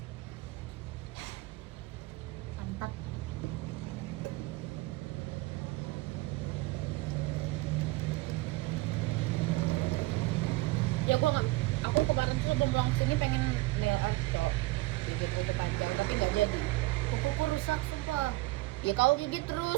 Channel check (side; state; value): left; quieter; 20.9 dB